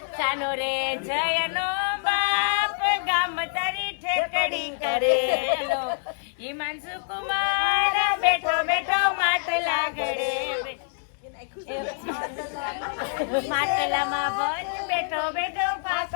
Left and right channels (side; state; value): right; silent; digital silence